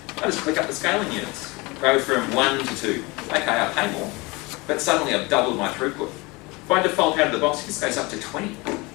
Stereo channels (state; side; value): quieter; right; 24.9 dB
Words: I just click up the scaling units. Go from 1 to 2. Okay, I pay more, but suddenly I've doubled my throughput. By default, out of the box, this goes up to 20.